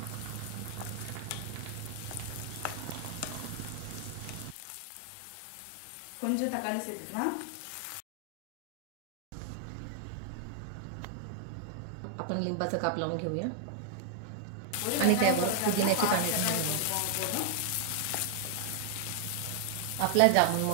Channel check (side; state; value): both; different; correlation 0.00